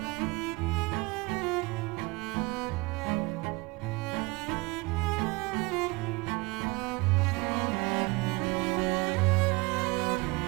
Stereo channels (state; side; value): quieter; left; 25.1 dB